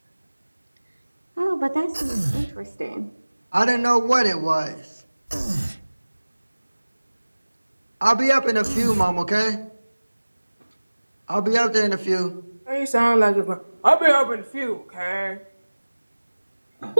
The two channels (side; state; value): both; inverted; correlation -1.00